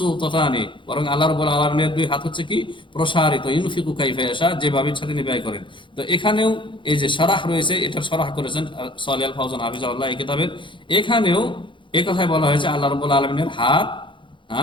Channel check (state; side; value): late; right; 0.24 ms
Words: বরং আল্লাহ রাব্বুল আলামিনের দুই হাত হচ্ছে কি প্রসারিত, ইউনফিকু কাইফা ইয়াশা, যেভাবে ইচ্ছা তিনি ব্যয় করেন। তো এখানেও এই যে শরাহ রয়েছে, এটার শরাহ করেছেন সালেহ আল ফাওজান হাফিজাহুল্লাহ এই কিতাবের। এখানেও এই কথাই বলা হয়েছে আল্লাহ রাব্বুল আলামিনের হাত,